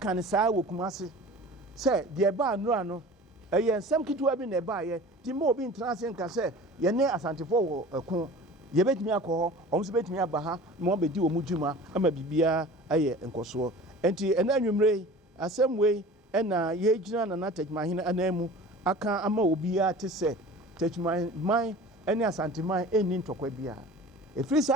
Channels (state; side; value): normal; both; correlation 0.40